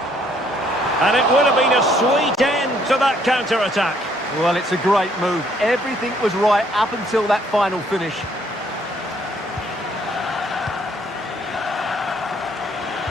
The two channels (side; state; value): both; normal; correlation 0.66